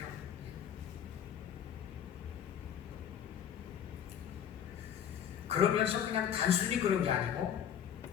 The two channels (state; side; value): quieter; right; 9.1 dB